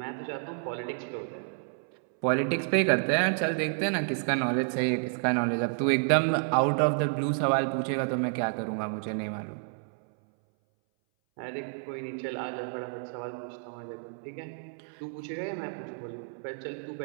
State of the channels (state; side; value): silent; left; 58 dB below the other